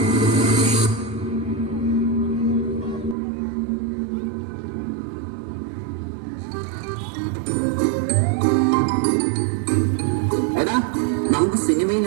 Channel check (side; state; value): left; drops out; at 3.2 s